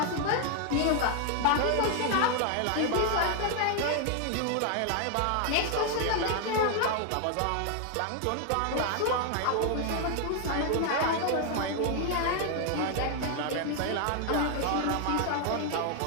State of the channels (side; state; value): both; different; correlation 0.00